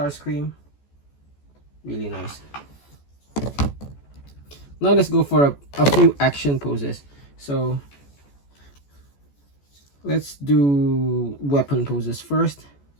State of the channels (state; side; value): late; right; 14 ms